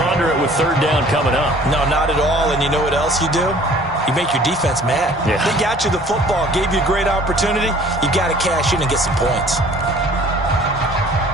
it with third down coming up. No, not at all. And you know what else you do? You make your defense mad. Yeah. They got you the football, gave you a great opportunity. You got to cash in and get some points.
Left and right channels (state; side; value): normal; both; correlation 0.52